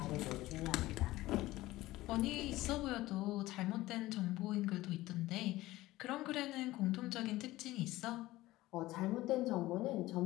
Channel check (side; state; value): right; quieter; 17.5 dB